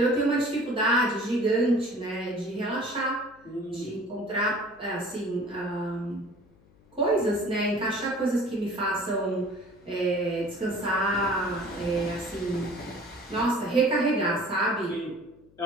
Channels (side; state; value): left; noise; hum, 29 dB below the sound